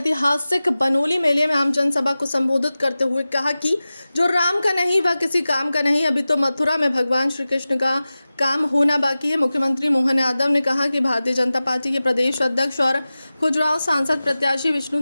बनोली मेले में आम जनसभा को संबोधित करते हुए कहा कि जो राम का नहीं वह किसी काम का नहीं। अभी तो मथुरा में भगवान श्री कृष्ण का काम होना बाकी है। मुख्यमंत्री मोहन यादव ने कहा कि भारतीय जनता पार्टी के प्रदेश अध्यक्ष और खजुराहो सांसद प्रत्याशी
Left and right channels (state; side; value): inverted; both; correlation -0.96